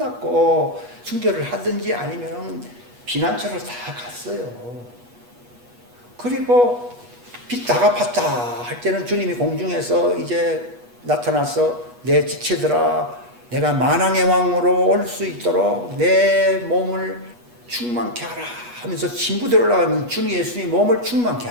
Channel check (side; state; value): left; late; 8.3 ms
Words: 순교를 하든지 아니면 피난처를 다 갔어요. 그리고 빚 다 갚았다 할 때는 주님이 공중에서 이제 나타나서 내 지체들아 내가 만왕의 왕으로 올 수 있도록 내 몸을 충만케 하라 하면서 신부대로 올라가면 주님 예수님이 몸을 충만케